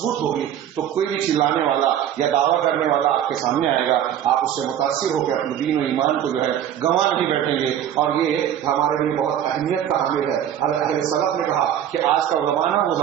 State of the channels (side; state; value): left; quieter; 10.3 dB